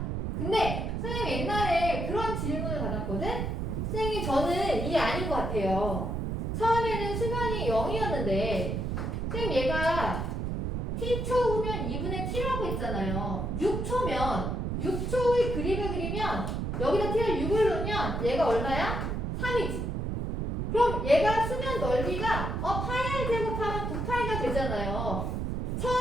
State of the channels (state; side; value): noise; right; rumble, 2 dB below the sound